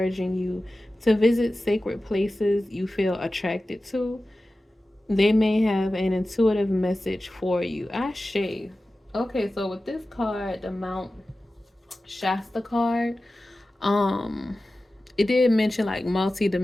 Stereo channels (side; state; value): both; normal; correlation 0.95